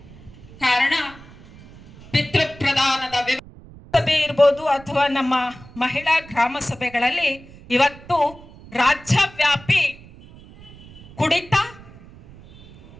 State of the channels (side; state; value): right; noise; rumble, 20 dB below the sound